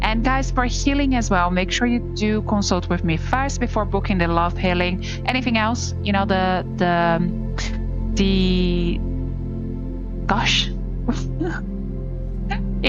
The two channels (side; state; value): both; identical; correlation 1.00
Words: And guys, for healing as well, make sure you do consult with me first before booking the love healing. Anything else, you know, gosh.